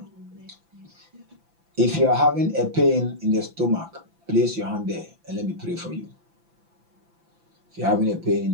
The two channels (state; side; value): late; left; 5.9 ms